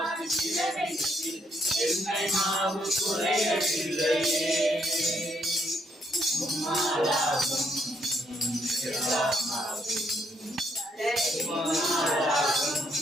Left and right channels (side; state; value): both; normal; correlation 0.73